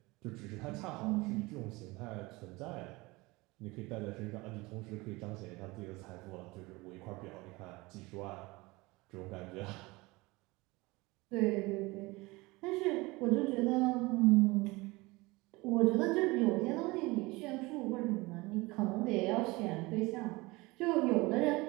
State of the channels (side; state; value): left; quieter; 22.8 dB